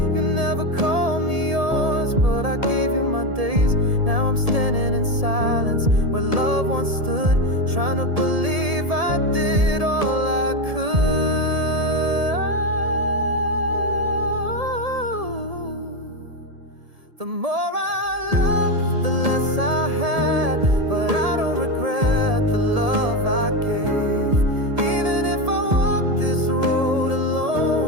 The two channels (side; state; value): left; late; 1.7 ms